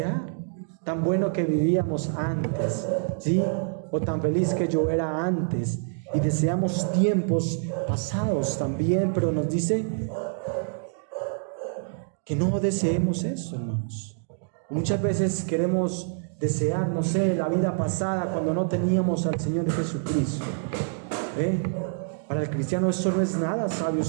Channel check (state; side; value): silent; left; 61 dB below the other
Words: Tan bueno que vivíamos antes, ¿sí? O tan feliz que yo era antes. Y deseamos tiempos pasados también, pero nos dice que no deseemos eso, hermanos. Muchas veces queremos desear, no sé, la vida pasada, cuando no teníamos al Señor Jesucristo. Para el cristiano eso no es nada sabio,